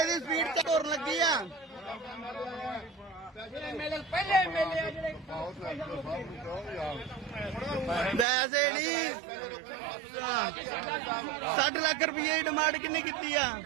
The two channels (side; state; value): left; drops out; at 8.2 s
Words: ਦੀ ਸਪੀਡ ਤੇ ਤੁਰਨ ਲੱਗੀ ਆ ਐਮਐਲਏ ਪਹਿਲੇ ਐਮਐਲਏ ਆ ਜਿਹੜੇ ਵੈਸੇ ਨਹੀਂ 60 ਲੱਖ ਰੁਪਏ ਦੀ ਡਿਮਾਂਡ ਕਿੰਨੀ ਕੀਤੀ ਆ